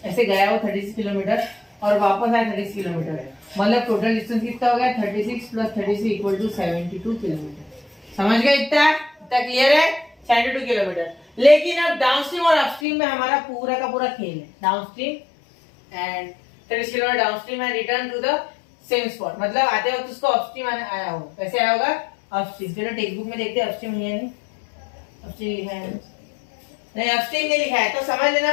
ऐसे गया वो 36 किलोमीटर और वापस आया 36 किलोमीटर, मतलब टोटल डिस्टेंस कितना हो गया, 36 + 36 = 72 किलोमीटर। समझ गए? इतना क्लियर है, 72 किलोमीटर। लेकिन अब डाउनस्ट्रीम और अपस्ट्रीम में हमारा पूरा का पूरा खेल है। Downstream and 30 kilometre downstream and return to the same spot, मतलब आते वक्त उसको अपस्ट्रीम आया हो, कैसे आया होगा, अपस्ट्रीम। चलो टेक्स्ट बुक में देखते हैं, अपस्ट्रीम नहीं है, नहीं अपस्ट्रीम लिखा है, नहीं अपस्ट्रीम नहीं लिखा है, तो समझ लेना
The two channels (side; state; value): right; drops out; at 12.9 s